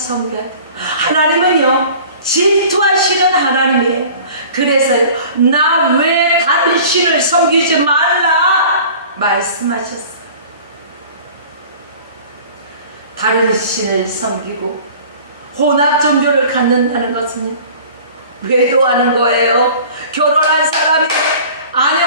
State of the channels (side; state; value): both; inverted; correlation -0.44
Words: 돼요. 하나님은요, 질투하시는 하나님이에요. 그래서 나 왜 다른 신을 섬기지 말라 말씀하셨어요. 다른 신을 섬기고 혼합 종교를 갖는다는 것은 외도하는 거예요. 결혼한 사람이